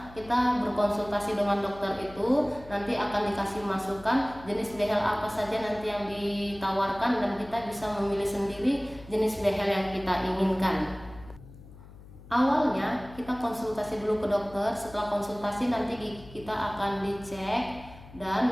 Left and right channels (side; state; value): left; noise; hum, 19 dB below the sound